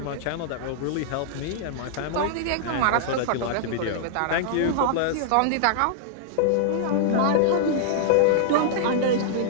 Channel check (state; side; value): different; both; correlation -0.01